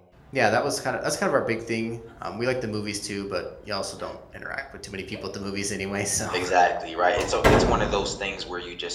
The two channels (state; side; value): identical; both; correlation 1.00